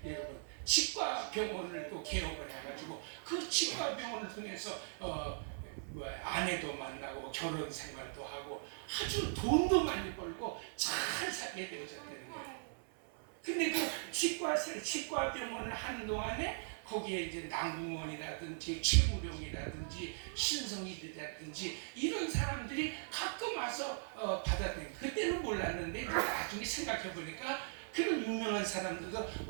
여러분 치과 병원을 또 개업을 해가지고 그 치과 병원을 통해서 아내도 만나고 결혼 생활도 하고 아주 돈도 많이 벌고 잘 살게 되어졌다는 거예요. 근데 그 치과 병원을 하는 동안에 거기에 이제 남궁원이라든지 최무룡이라든지 신성일이라든지 이런 사람들이 가끔 와서 받아들인, 그때는 몰랐는데 나중에 생각해 보니까 그런 유명한 사람들도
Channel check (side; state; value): left; silent; 52 dB below the other